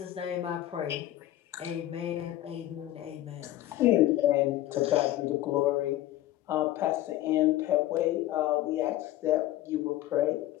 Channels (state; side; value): quieter; right; 14.4 dB